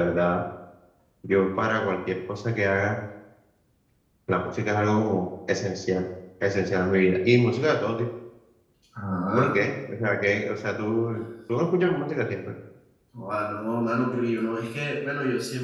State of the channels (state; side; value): identical; both; correlation 1.00